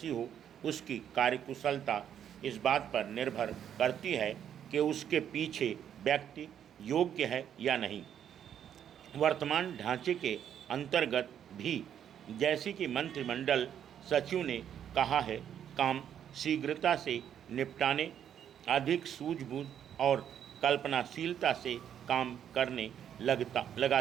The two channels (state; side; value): quieter; left; 9.4 dB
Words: हो, उसकी कार्यकुशलता इस बात पर निर्भर करती है कि उसके पीछे व्यक्ति योग्य है या नहीं। वर्तमान ढांचे के अंतर्गत भी, जैसे कि मंत्रिमंडल सचिव ने कहा है, काम शीघ्रता से निपटाने, अधिक सूझबूझ और कल्पनाशीलता से काम करने